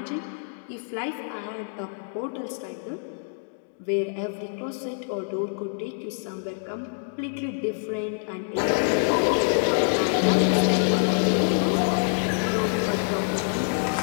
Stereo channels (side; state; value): right; silent; digital silence